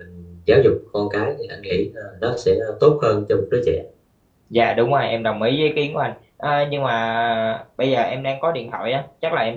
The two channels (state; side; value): identical; both; correlation 1.00